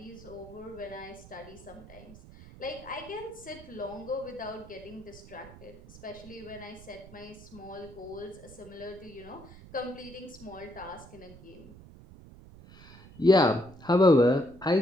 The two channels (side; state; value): right; noise; rumble, 18 dB below the sound